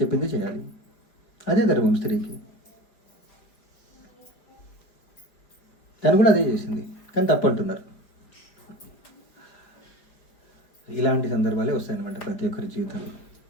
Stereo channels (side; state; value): right; late; 5.0 ms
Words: చేయాలి, అదే ధర్మం స్త్రీకి. తను కూడా అదే చేసింది, కానీ తప్పంటున్నారు. ఇలాంటి సందర్భాలే వస్తాయన్నమాట ప్రతి ఒక్కరి జీవితంలో.